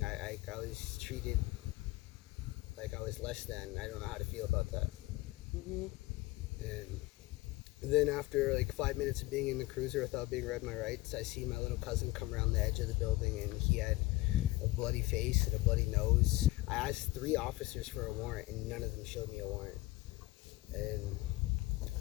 I was treated like I was less than. I don't know how to feel about that. Mm-hmm. And then after 5 minutes of being in the cruiser without being read my rights, I see my little cousin come around the edge of the building, and he had a bloody face and a bloody nose. I asked 3 officers for a warrant, and none of them showed me a warrant. And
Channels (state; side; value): quieter; right; 19.5 dB